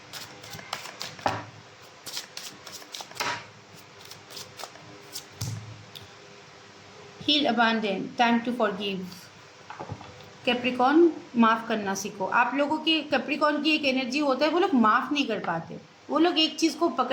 heal, abandon, time to forgive. Capricorn, माफ़ करना सीखो। आप लोगों की कैप्रिकॉर्न की एक एनर्जी होता है, वो लोग माफ़ नहीं कर पाते, वो लोग एक चीज़ को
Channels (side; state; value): both; identical; correlation 1.00